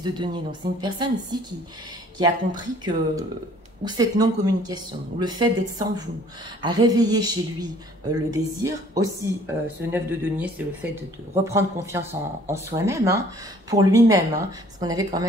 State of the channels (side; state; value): both; normal; correlation 0.55